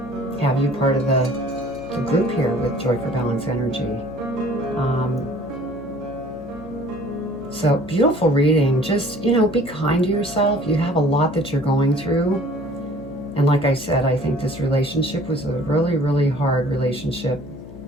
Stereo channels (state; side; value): noise; left; hum, 16 dB below the sound